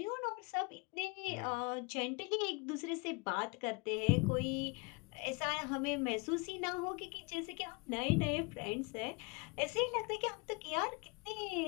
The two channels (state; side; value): quieter; right; 29.9 dB